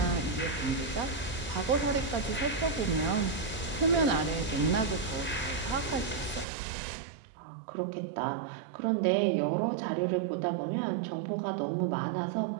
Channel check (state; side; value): drops out; left; at 6.5 s